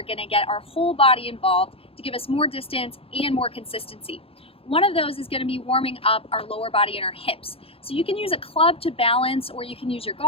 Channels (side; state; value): right; late; 0.27 ms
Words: going to get our whole body involved to give us more distance and more consistency. One of those is going to be warming up our lower body and our hips. So you can use a club to balance, or you can use your